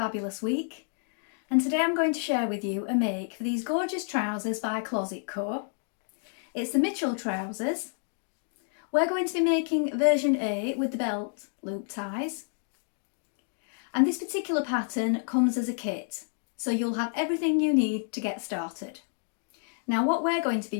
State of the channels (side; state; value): right; silent; 58 dB below the other